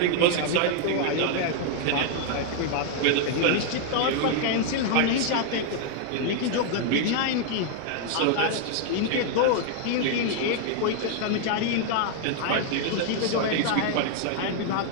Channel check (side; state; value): both; different; correlation 0.00